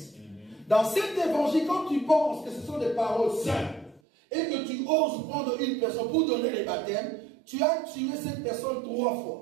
Dans cet évangile, quand tu penses que ce sont des paroles simples et que tu oses prendre une personne pour donner les baptêmes, tu as tué cette personne 3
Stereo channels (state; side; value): drops out; left; at 4.0 s